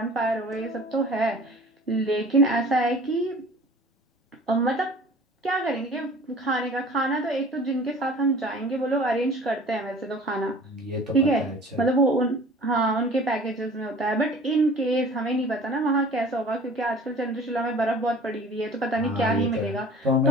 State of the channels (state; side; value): normal; both; correlation 0.45